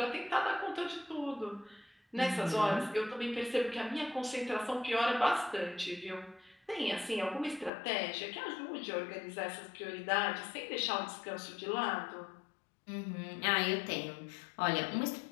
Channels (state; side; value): drops out; right; at 7.7 s